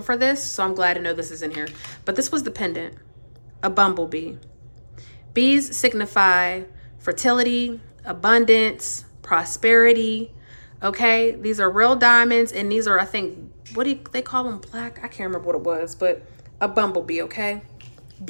for this, so I'm glad to know this is in here. But this was the pendant, a bumblebee. Bees signify fertility, abundance, prosperity. Okay, these are real diamonds, and these are, I think, what do they call them? Black? I can't remember what it was, but a bumblebee. Okay,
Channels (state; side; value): inverted; both; correlation -1.00